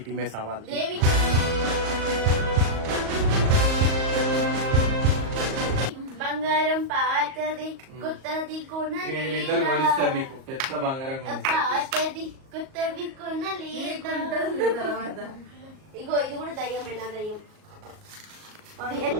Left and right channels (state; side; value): late; left; 38 ms